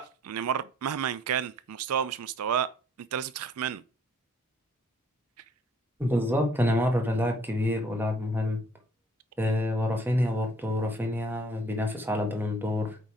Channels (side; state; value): both; normal; correlation 0.59